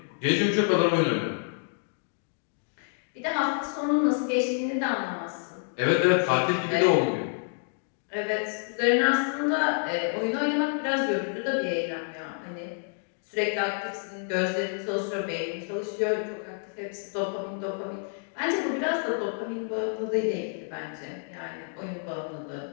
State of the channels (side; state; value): right; silent; 59 dB below the other